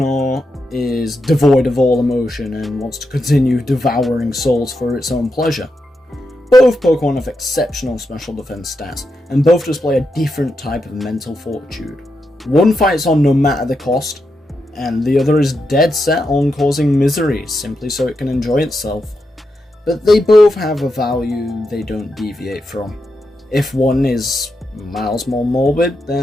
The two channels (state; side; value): normal; both; correlation 0.85